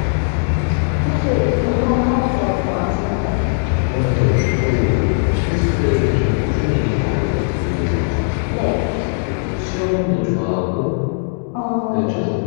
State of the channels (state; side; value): silent; right; digital silence